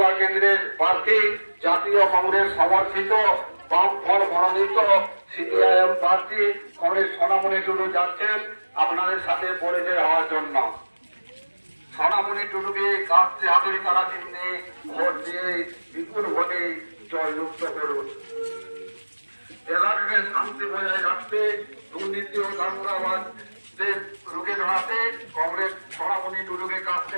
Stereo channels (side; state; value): both; inverted; correlation -1.00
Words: কেন্দ্রের প্রার্থী জাতীয় কংগ্রেস সমর্থিত বামফ্রন্ট মনোনীত সিপিআইএম প্রার্থী কংগ্রেস সোনামণি টুডু যাচ্ছেন আপনাদের সাথে পরিচয় হওয়ার জন্য। সোনামণি টুডুকে কাস্তে হাতুড়ি তারা চিহ্নে ভোট দিয়ে বিপুল ভোটে জয়যুক্ত করুন। এলাকাকে শান্তি বজায় রাখতে, দুর্নীতি ও দাঙ্গাবাজদের রুখে দাঁড়াতে কংগ্রেস সোনামণি টুডুকে কাস্তে